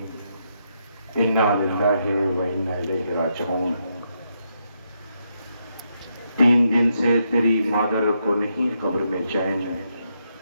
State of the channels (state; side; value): inverted; both; correlation -0.80